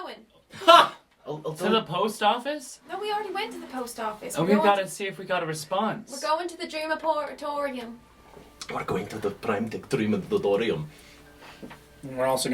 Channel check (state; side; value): identical; both; correlation 1.00